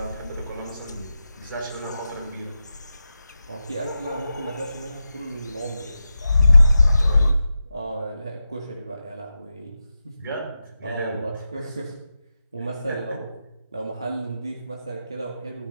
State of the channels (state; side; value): inverted; both; correlation -0.89